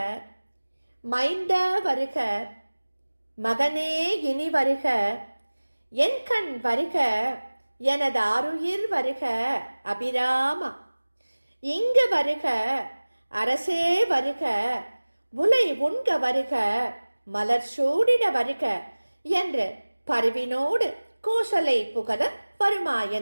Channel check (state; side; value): inverted; both; correlation -1.00